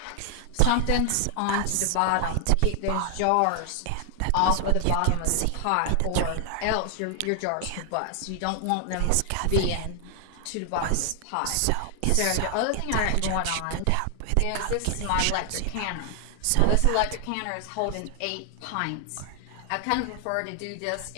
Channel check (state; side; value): different; both; correlation 0.00